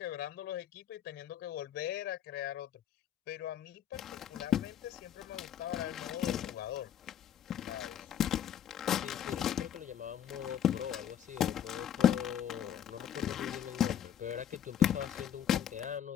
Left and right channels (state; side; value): quieter; right; 9.9 dB